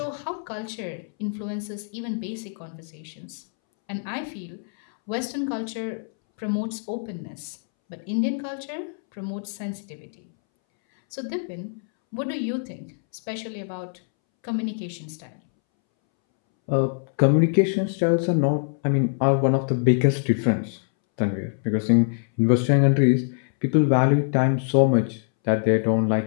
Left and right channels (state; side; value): silent; right; 62 dB below the other